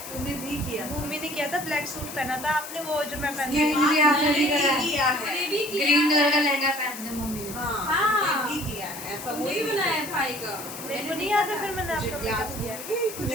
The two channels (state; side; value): noise; left; hiss, 11 dB below the sound